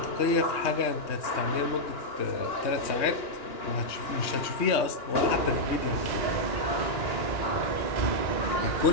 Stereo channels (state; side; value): late; right; 3.2 ms